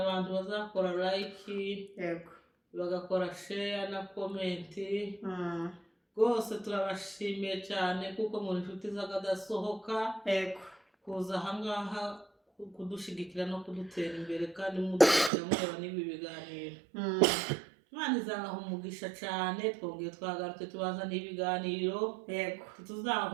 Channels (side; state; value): left; drops out; at 15.3 s